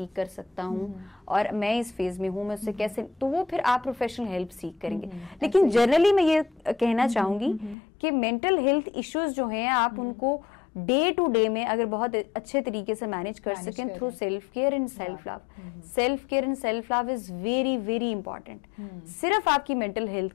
कर सकता हूँ और मैं इस फेज में हूँ, मैं उससे कैसे, तो वो फिर आप प्रोफेशनल हेल्प सीख करेंगे। लेकिन जनरली मैं ये कहना चाहूंगी कि मेंटल हेल्थ इश्यूज जो हैं आप उनको डे टू डे में अगर बहुत अच्छे तरीके से मैनेज कर सकें through self care and self love. Self care and self love is very very important. सिर्फ आपकी मेंटल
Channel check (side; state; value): right; drops out; at 7.8 s